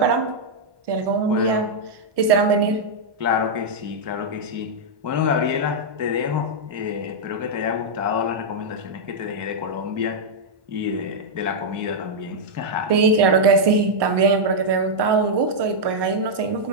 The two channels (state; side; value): late; left; 1.2 ms